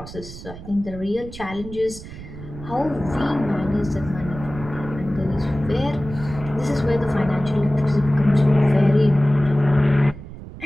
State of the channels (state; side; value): noise; right; rumble, 14 dB below the sound